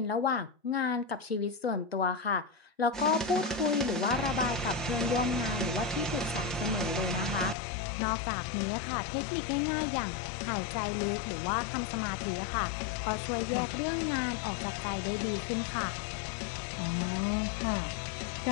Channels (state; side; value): drops out; right; at 7.6 s